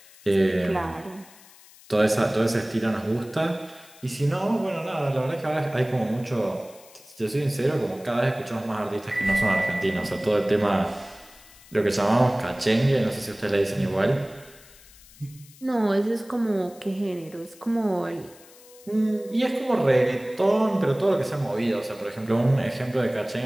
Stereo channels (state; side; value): noise; left; hiss, 23 dB below the sound